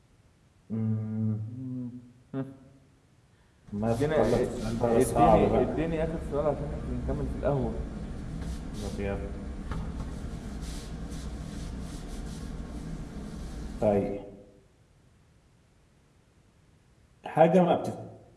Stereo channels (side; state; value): both; identical; correlation 1.00